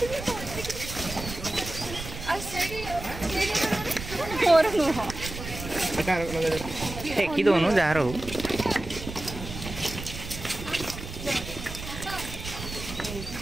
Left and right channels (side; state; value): right; noise; rumble, 10 dB below the sound